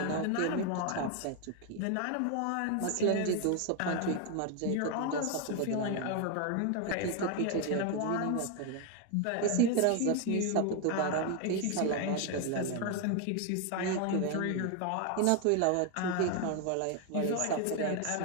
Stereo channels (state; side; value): different; both; correlation 0.01